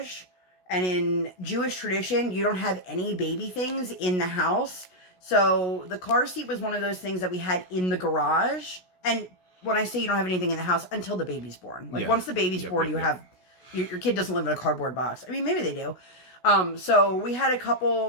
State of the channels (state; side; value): late; right; 16 ms